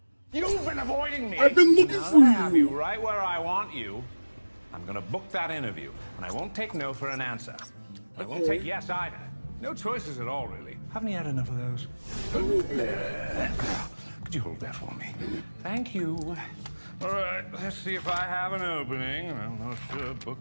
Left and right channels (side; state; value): both; inverted; correlation -1.00